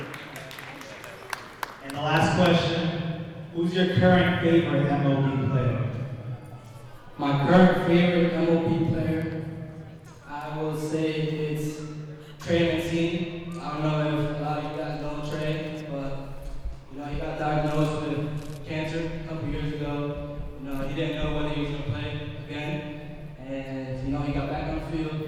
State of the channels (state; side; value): identical; both; correlation 1.00